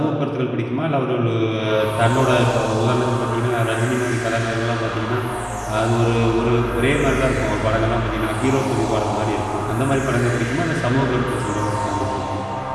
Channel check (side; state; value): both; identical; correlation 1.00